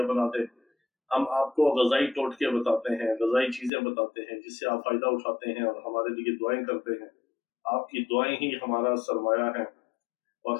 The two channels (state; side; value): drops out; right; at 3.7 s